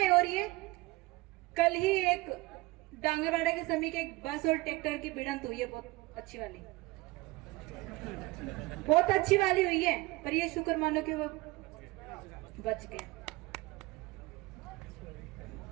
हो रही है। कल ही एक डांगरवाड़ा के समीप एक बस और ट्रैक्टर की भिड़ंत हुई है, बहुत अच्छी वाली हुई है, पर ये शुक्र मानो कि वो बच गया।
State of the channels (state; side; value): quieter; left; 21.8 dB